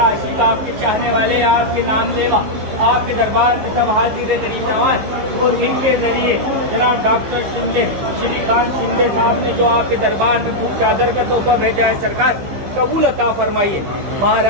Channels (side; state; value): left; late; 15 ms